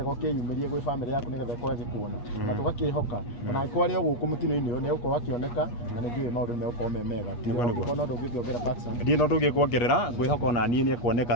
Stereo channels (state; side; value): late; right; 8.4 ms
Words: ũkĩyumĩrie gwĩ famĩlĩ yaku nĩgetha ĩkorwo ĩgĩkuona na tũgakĩhoka ona angĩkorwo arĩ o gũkũ mũtino-inĩ ũyũ nĩ ũgũkorwo akĩoneka na nĩ njũĩ maũndũ nĩ megũkorwo me mega no ndũngĩkĩongerera Paxson ndiĩ no ndũngĩkuongerera ngwĩhoka ona niĩ nĩ